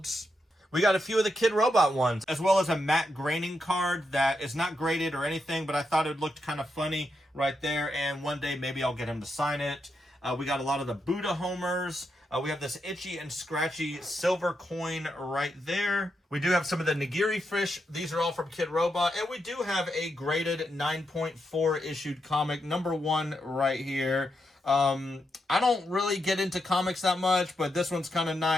We got a few of the Kid Robot ones, as well as a matte graining card that is not graded or anything, but I thought it looked kind of funny right there, and one day maybe I'll get him to sign it. We got a lot of the Buddha Homers. We have this Itchy and Scratchy silver coin right there. We do have some of the Nigiri fish. These are all from Kid Robot. And we do have a graded 9.4 issued comic, #1 right here. I don't really get into comics that much, but this one's kind of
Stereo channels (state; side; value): normal; both; correlation 0.84